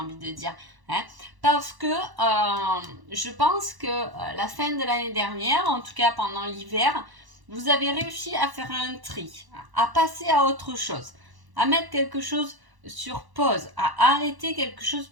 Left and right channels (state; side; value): late; left; 1.1 ms